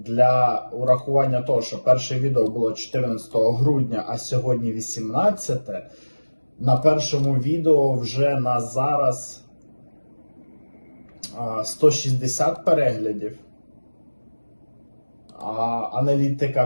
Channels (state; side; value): inverted; both; correlation -1.00